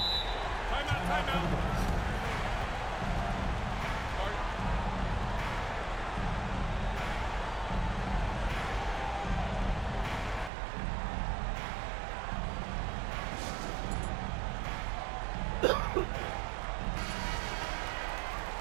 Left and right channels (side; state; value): left; drops out; at 10.5 s